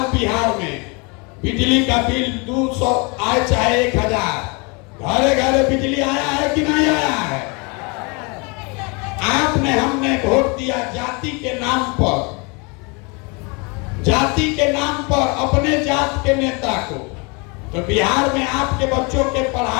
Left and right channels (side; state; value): right; quieter; 30.9 dB